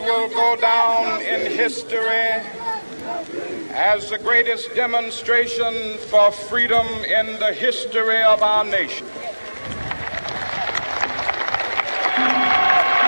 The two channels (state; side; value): inverted; both; correlation -1.00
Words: go down in history as the greatest demonstration for freedom in the history of our nation.